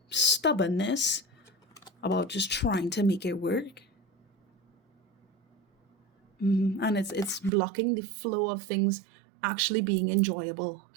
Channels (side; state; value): left; drops out; at 7.5 s